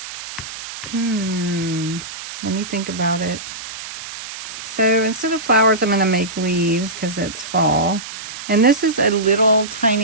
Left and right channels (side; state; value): right; noise; hiss, 11 dB below the sound